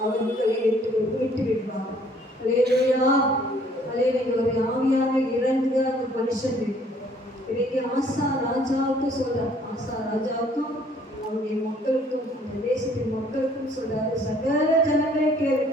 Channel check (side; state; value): both; normal; correlation 0.60